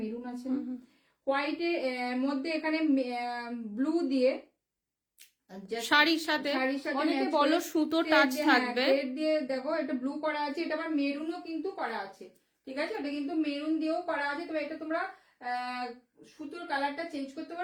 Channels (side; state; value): both; identical; correlation 1.00